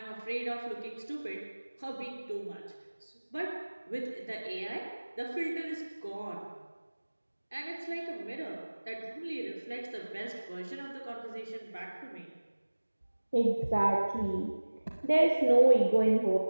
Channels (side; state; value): both; inverted; correlation -1.00